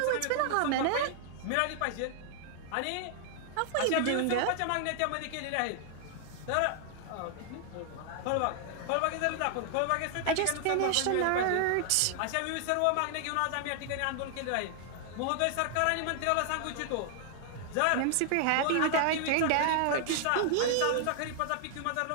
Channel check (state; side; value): different; both; correlation 0.00